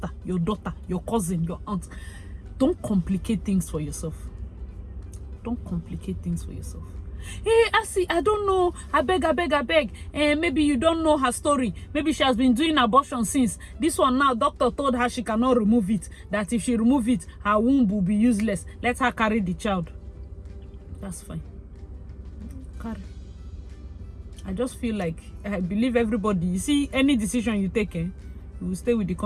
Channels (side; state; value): both; identical; correlation 1.00